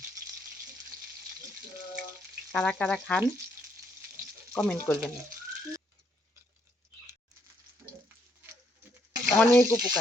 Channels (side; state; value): both; normal; correlation 0.72